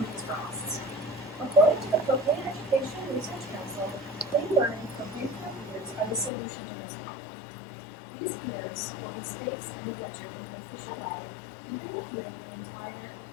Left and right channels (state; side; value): drops out; right; at 6.3 s